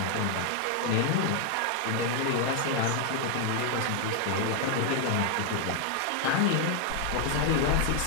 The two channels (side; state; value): both; different; correlation 0.00